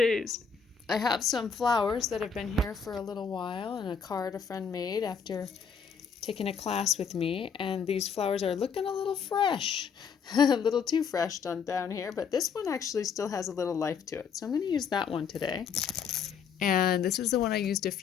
I have some flowers that have been here for a little while and a card a friend made after taking a class with me, and these flowers are looking a little fresh, a little too fresh down here, but this one actually still has a little life to it. So I'm going to use that one today. And this is the one I used a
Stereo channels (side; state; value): right; quieter; 6.4 dB